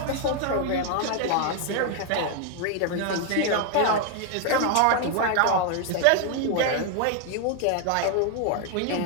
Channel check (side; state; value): both; different; correlation 0.01